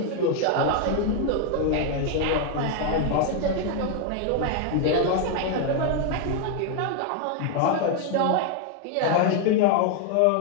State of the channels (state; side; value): different; both; correlation 0.00